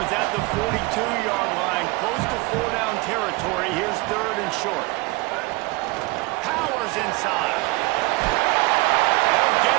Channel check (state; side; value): quieter; left; 24.5 dB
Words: is at the 42-yard line, close to 4-down territory. Here's third and short. Powers inside. They'll get